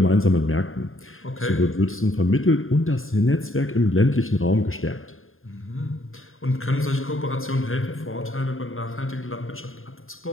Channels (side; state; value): right; late; 0.60 ms